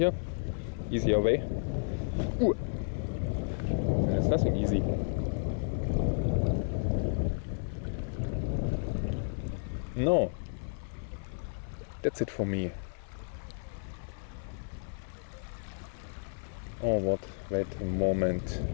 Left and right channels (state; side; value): silent; right; 56 dB below the other